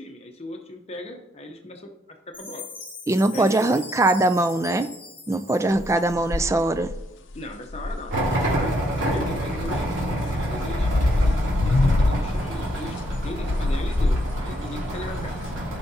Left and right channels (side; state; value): both; normal; correlation 0.73